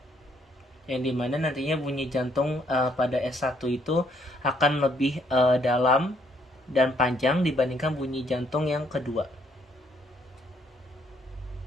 Yang dimana nantinya bunyi jantung pada S1 itu akan lebih dalam dan panjang dibandingkan bunyi jantung yang kedua.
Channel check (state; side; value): normal; both; correlation 0.69